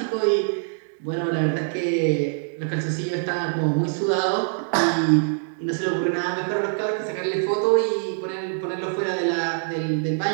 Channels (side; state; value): left; silent; 63 dB below the other